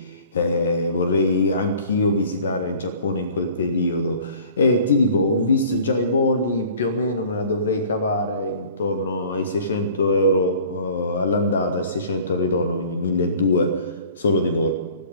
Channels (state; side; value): inverted; both; correlation -0.49